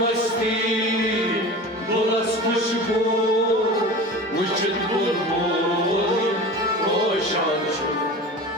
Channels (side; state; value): both; normal; correlation 0.34